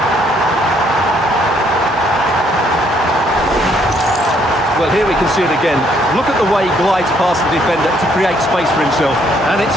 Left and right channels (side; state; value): both; normal; correlation 0.68